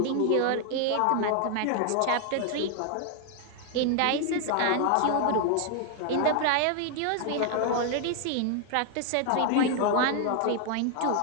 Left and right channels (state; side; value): different; both; correlation 0.00